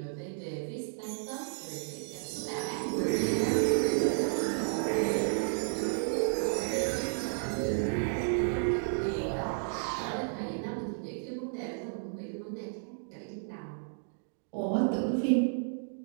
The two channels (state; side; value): silent; left; digital silence